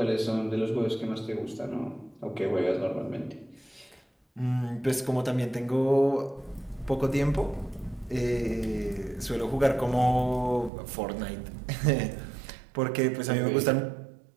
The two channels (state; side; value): drops out; left; at 10.7 s